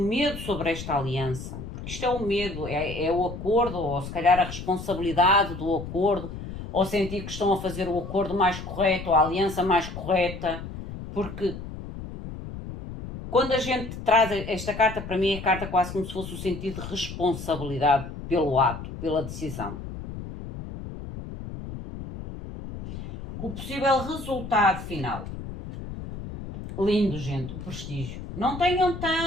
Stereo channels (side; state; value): left; noise; rumble, 10 dB below the sound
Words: sobre esta aliança. Porque isto é o medo, é o acordo, ou se calhar a responsabilidade do acordo, ou sentir que estão a fazer o acordo mais correto, ou a aliança mais correta. Porque quando a gente traz esta carta, para mim é carta quase como se fosse o sentido de responsabilidade pelo ato, pela decisão. O possível resultado final. Lindo, gente, o prestígio. Não tenham